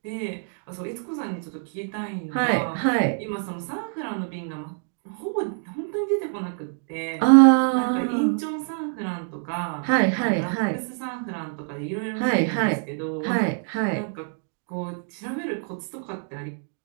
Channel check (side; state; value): left; silent; 61 dB below the other